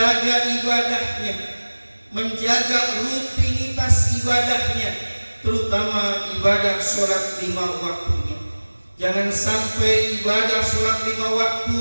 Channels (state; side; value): inverted; both; correlation -1.00